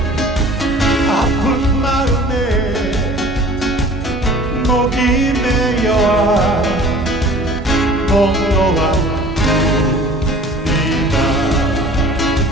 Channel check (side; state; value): both; normal; correlation 0.46